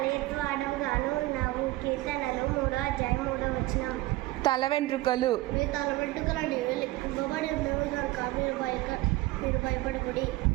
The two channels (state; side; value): quieter; left; 18.6 dB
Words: ఎత్తువాడముగాను ఉన్నావు. కీర్తనలు 3వ అధ్యాయం 3వ వచనం. తల వెంట్రుకలు. మీ తల వెంట్రుకలు నీవే లెక్కింపబడి ఉండవు కనుక మీరు భయపడకుడి.